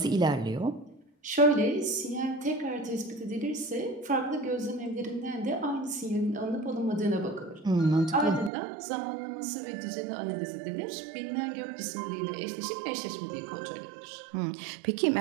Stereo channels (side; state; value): left; drops out; at 8.5 s